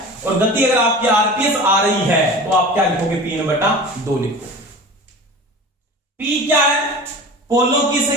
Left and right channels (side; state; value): both; normal; correlation 0.36